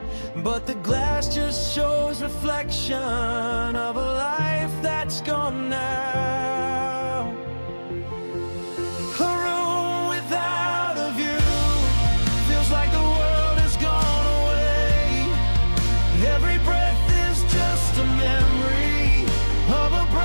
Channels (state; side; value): inverted; both; correlation -1.00